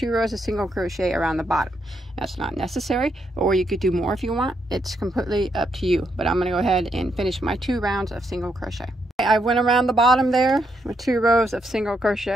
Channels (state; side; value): normal; both; correlation 0.78